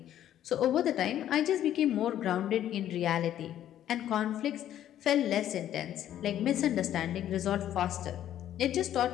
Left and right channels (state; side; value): quieter; right; 11.5 dB